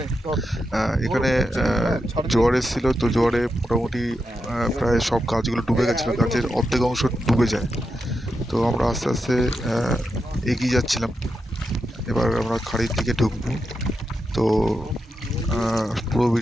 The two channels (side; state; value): both; normal; correlation 0.86